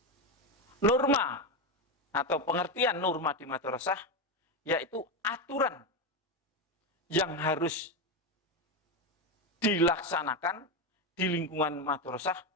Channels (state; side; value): normal; both; correlation 0.12